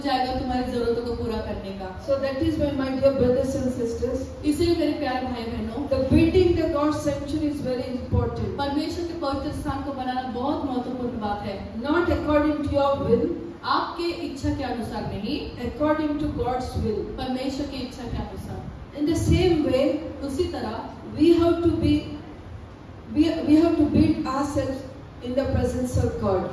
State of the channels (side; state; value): both; identical; correlation 1.00